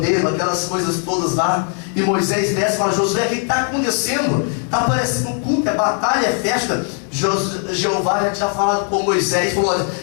aquelas coisas todas lá. E Moisés desce e fala: Josué, o que está acontecendo? Está parecendo um culto, é batalha, é festa. Jeová já tinha falado com Moisés, falou: olha,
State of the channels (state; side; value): quieter; right; 38.2 dB